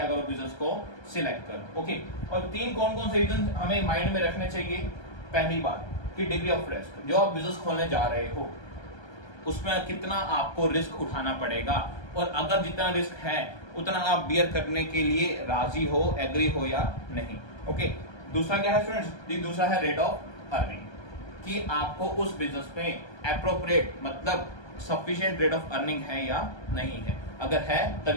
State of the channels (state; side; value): late; right; 1.3 ms